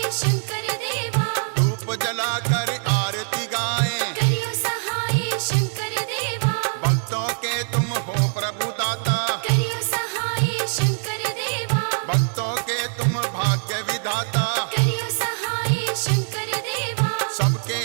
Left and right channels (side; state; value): left; silent; 56 dB below the other